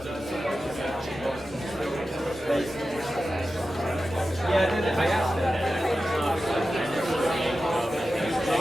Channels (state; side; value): normal; both; correlation 0.93